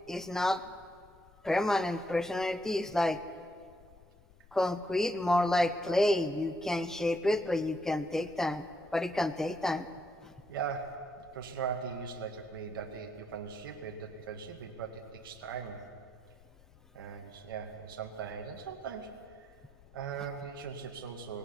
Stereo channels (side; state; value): left; noise; rumble, 25 dB below the sound